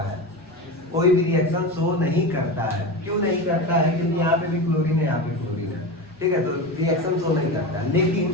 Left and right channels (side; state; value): both; normal; correlation 0.24